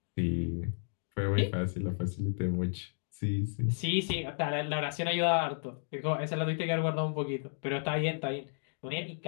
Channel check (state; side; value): silent; right; digital silence